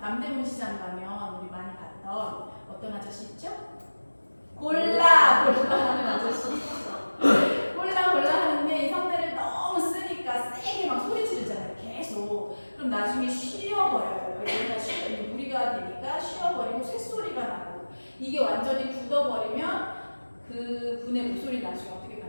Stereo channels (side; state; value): both; inverted; correlation -1.00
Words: 시장 가면 우리 많이 봤던 어떤 아저씨 있죠? 골라 하는 아저씨. 골라 하는데 이 성대를 너무 쓰니까 세게 막 소리 지르잖아요. 계속. 그럼 나중에 쉬어버려요. 여기가 무리가 되니까 쉬어버리고 쇳소리가 나고 이게 완전히 굳어버리면 그 분의 목소리 나중에 어떻게